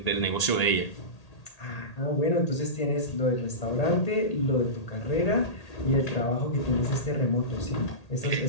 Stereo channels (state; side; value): late; right; 1.8 ms